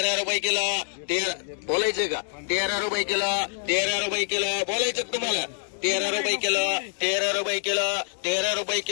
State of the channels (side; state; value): right; silent; 61 dB below the other